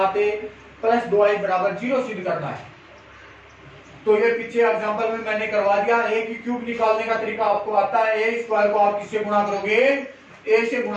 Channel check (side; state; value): both; identical; correlation 1.00